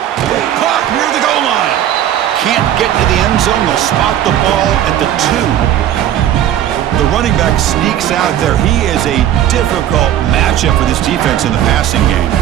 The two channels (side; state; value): left; quieter; 11.3 dB